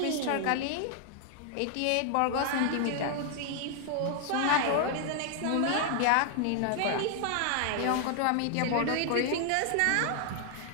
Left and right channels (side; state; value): both; different; correlation 0.00